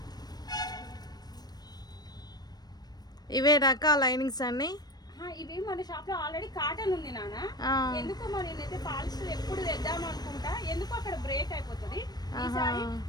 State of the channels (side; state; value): right; late; 0.19 ms